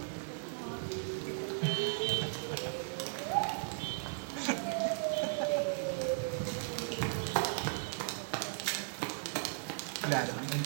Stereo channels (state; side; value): silent; left; digital silence